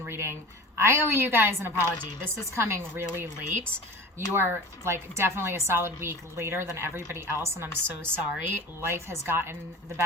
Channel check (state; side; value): normal; both; correlation 0.36